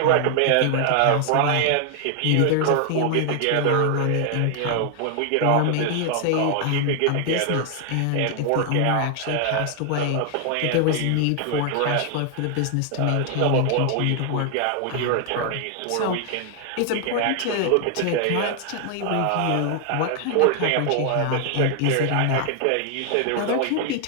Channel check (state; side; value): different; both; correlation 0.00